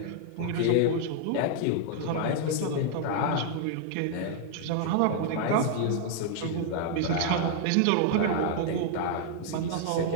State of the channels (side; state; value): both; different; correlation 0.00